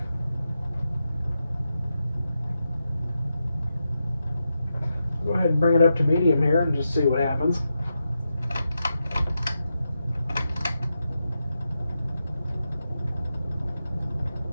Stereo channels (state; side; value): inverted; both; correlation -0.87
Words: Go ahead and bring it up to medium here and just see what happens.